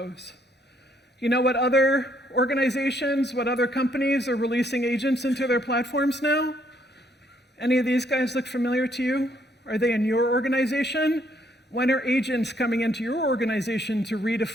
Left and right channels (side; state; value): both; normal; correlation 0.69